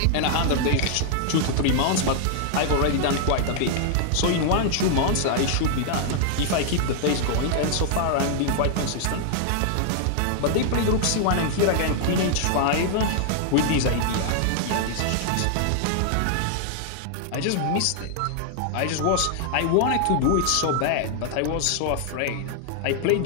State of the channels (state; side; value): different; both; correlation -0.01